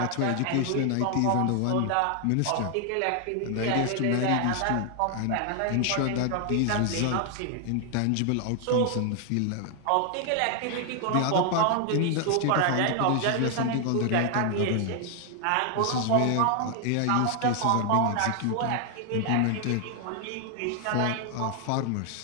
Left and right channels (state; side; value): different; both; correlation 0.00